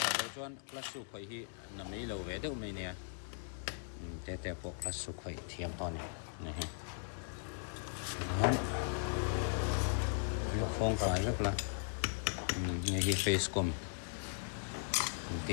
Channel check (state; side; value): silent; right; digital silence